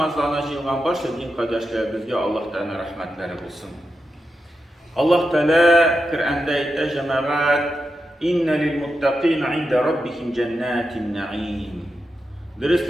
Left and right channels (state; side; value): normal; both; correlation 0.88